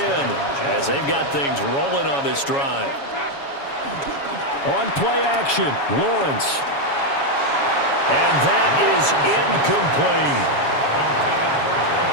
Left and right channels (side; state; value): right; late; 7.2 ms